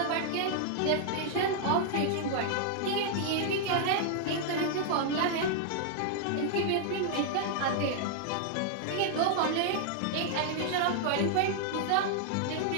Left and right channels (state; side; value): different; both; correlation 0.00